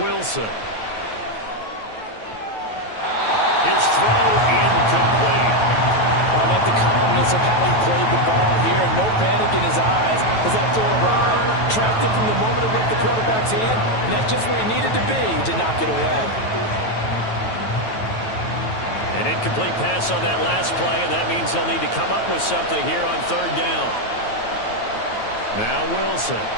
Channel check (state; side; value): late; right; 9.2 ms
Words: His throw incomplete. I like the calmness of how he played the ball here. No panic in his eyes as that throw arrived. Tracked it from the moment it left the quarterback's hand, and that's just where he needed to be to knock it away. An incomplete pass on that last play, and that means they'll need to come up with something here on 3rd down. Now Wilson.